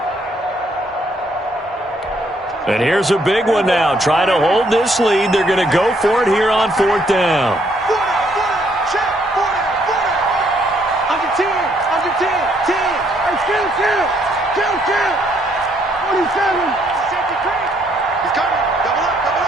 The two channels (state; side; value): normal; both; correlation 0.69